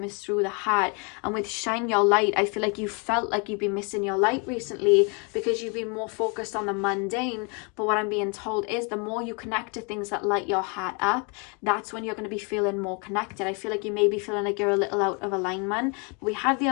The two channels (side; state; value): right; quieter; 34.2 dB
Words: is through the heart. And with Shine Your Light, I feel like you felt like you've been missing your light recently because you've been more focused on the mundane. But what I'm being told is the more you connect to things that light your heart up, that's when you're going to be feeling more connected. I feel like you may be feeling like you're a little out of alignment. We have the